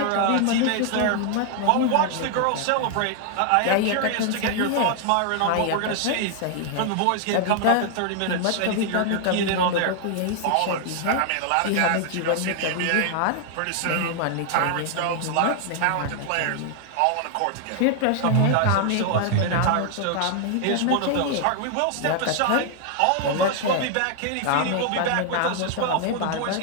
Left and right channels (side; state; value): both; different; correlation 0.00